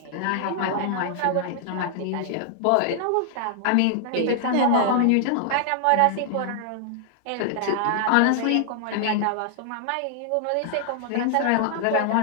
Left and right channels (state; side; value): different; both; correlation -0.01